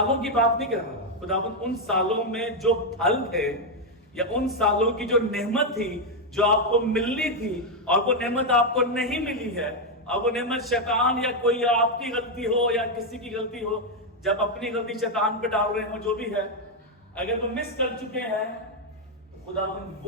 کی بات نہیں کر رہا. خداوند ان سالوں میں جو پھل تھے یا ان سالوں کی جو نعمت تھی جو آپ کو ملنی تھی اور وہ نعمت آپ کو نہیں ملی ہے، اور وہ نعمت شیطان یا کوئی آپ کی غلطی ہو یا کسی کی غلطی ہو، جب اپنی غلطی شیطان پہ ڈال رہے ہوں جو بھی ہے، اگر وہ مس کر چکے ہیں تو خداوند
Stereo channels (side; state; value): both; normal; correlation 0.02